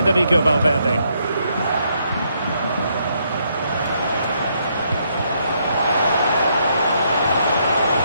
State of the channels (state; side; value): inverted; both; correlation -0.74